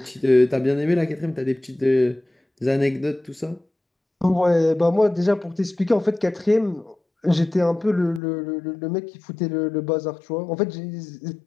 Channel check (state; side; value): drops out; right; at 8.2 s